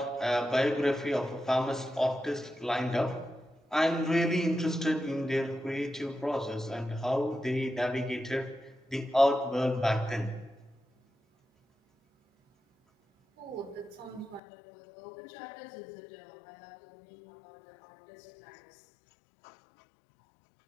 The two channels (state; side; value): drops out; right; at 14.4 s